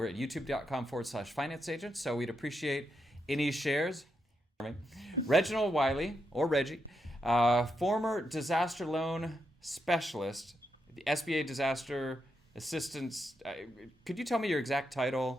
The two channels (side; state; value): both; normal; correlation 0.83